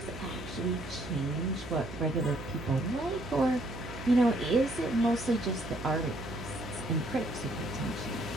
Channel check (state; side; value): noise; right; hum, 11 dB below the sound